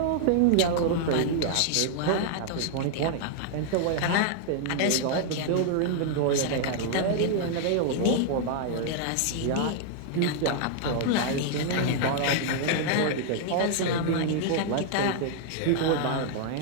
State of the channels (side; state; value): both; different; correlation 0.00